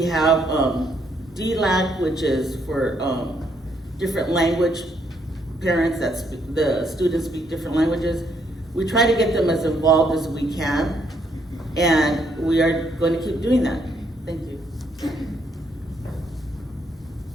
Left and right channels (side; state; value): both; normal; correlation 0.73